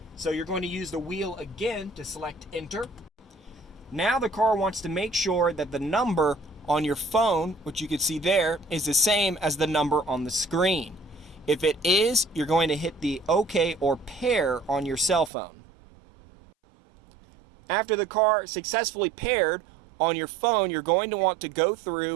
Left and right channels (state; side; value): drops out; left; at 15.3 s